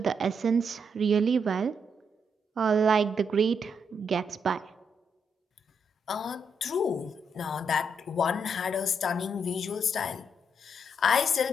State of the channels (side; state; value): both; normal; correlation 0.77